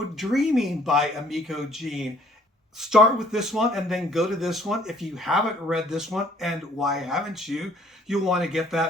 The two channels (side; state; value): both; normal; correlation 0.60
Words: Dreaming by Emiko Jean. Start with this one and then go to this one. If you haven't read this one, and why haven't you, you'll want to get